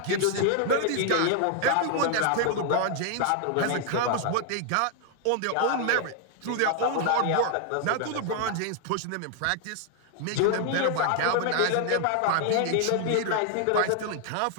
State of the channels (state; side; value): different; both; correlation 0.00